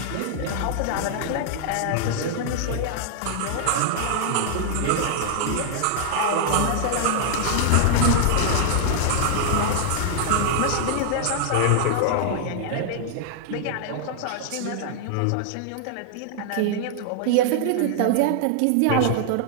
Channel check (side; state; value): both; different; correlation 0.00